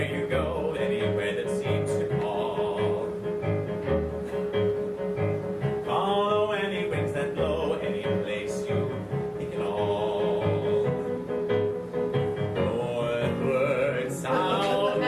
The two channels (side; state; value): both; identical; correlation 1.00